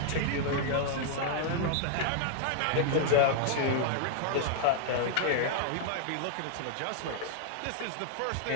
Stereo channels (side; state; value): both; different; correlation -0.01